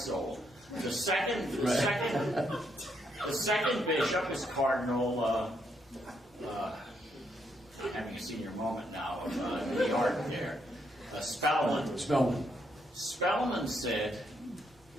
The second bishop is Cardinal, having a senior moment now of New York there, Spellman. Spellman said,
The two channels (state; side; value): normal; both; correlation 0.76